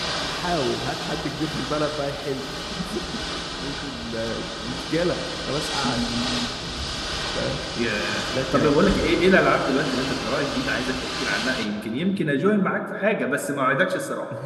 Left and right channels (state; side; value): identical; both; correlation 1.00